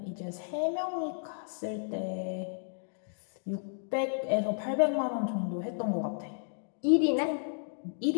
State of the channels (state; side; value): silent; right; digital silence